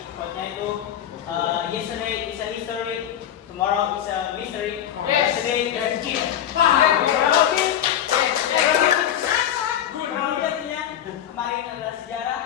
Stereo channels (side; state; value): right; quieter; 10.4 dB